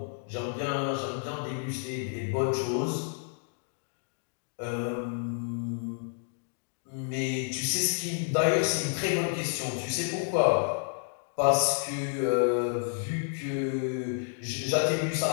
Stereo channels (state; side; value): silent; right; digital silence